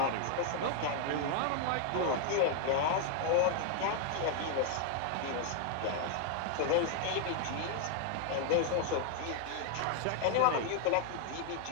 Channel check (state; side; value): different; both; correlation 0.00